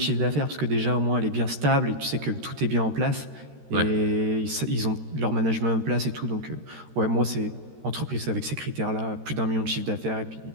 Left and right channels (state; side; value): late; left; 13 ms